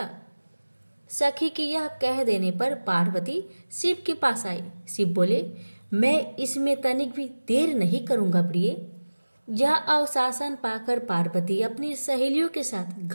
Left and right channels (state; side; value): inverted; both; correlation -1.00